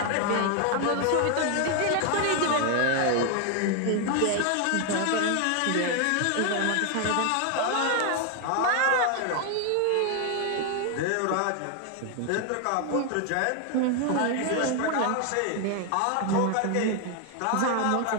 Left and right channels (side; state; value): both; different; correlation 0.00